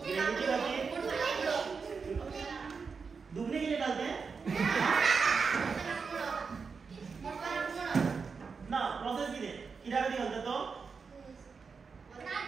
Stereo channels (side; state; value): left; quieter; 5.2 dB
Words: ग्रेविटी खातीर दुबणे कितें घालते ना प्रोसेस कितें कित्या खातीर घालता तो